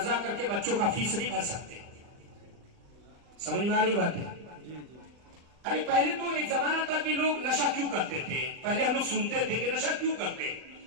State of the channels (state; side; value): late; left; 39 ms